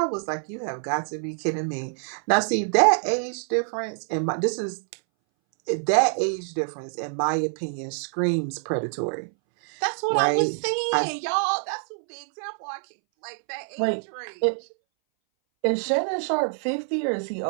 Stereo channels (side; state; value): left; silent; 61 dB below the other